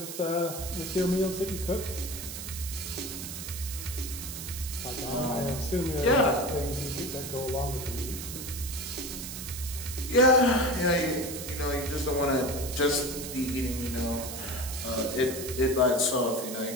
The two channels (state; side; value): noise; right; hiss, 8 dB below the sound